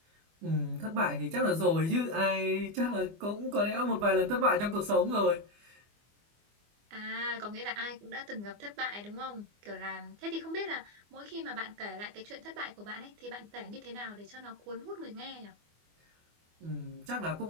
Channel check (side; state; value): left; late; 24 ms